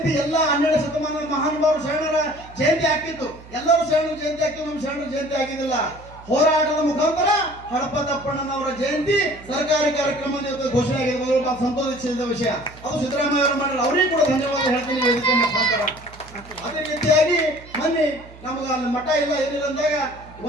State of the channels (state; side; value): noise; right; hum, 20 dB below the sound